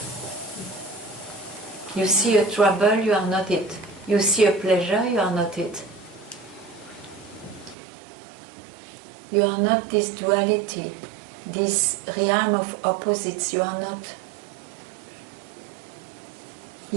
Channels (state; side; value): drops out; left; at 7.8 s